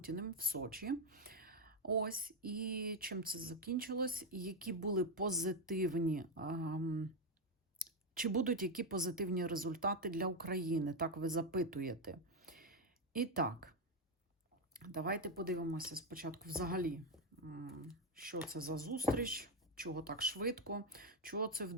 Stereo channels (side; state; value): both; normal; correlation 0.06